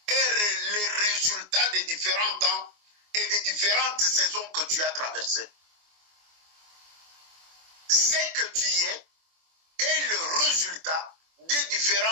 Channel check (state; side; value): late; left; 24 ms